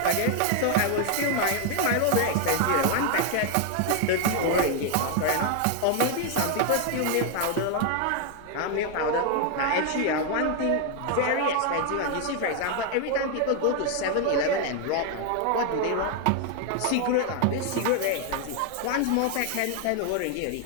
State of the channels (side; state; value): both; different; correlation 0.00